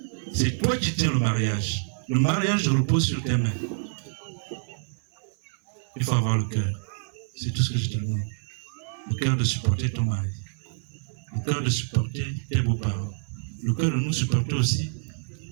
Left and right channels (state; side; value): silent; left; 56 dB below the other